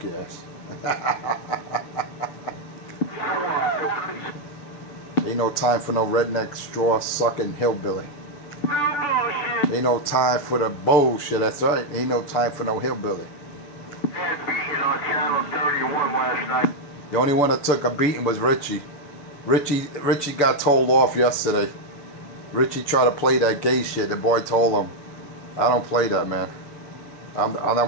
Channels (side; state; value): right; late; 6.9 ms